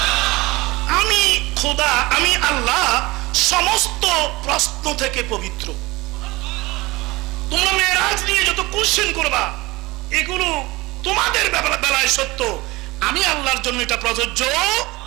আমি খোদা, আমি আল্লাহ সমস্ত প্রশ্ন থেকে পবিত্র। তোমরা মেরাজ নিয়ে যত কোশ্চেন করবা, এগুলো তোমাদের বেলায় সত্য, আমি আল্লাহর জন্য এটা প্রযোজ্য।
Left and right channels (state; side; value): quieter; left; 21.5 dB